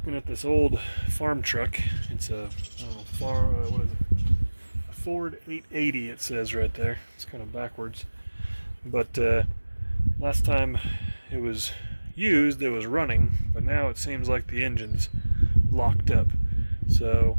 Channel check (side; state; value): both; inverted; correlation -1.00